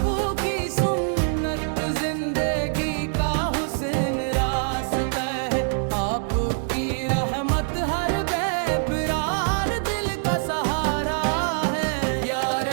सुन्नत जिंदगी का हुसैन रास्ता है। आपकी रहमत हर बेकरार दिल का सहारा है। या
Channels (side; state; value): left; silent; digital silence